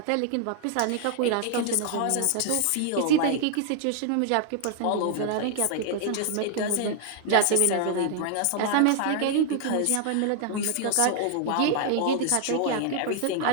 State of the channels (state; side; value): different; both; correlation 0.00